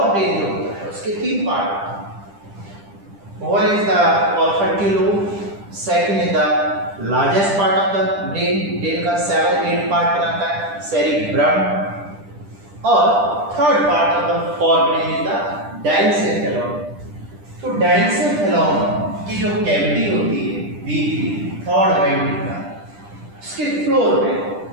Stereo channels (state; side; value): late; left; 10 ms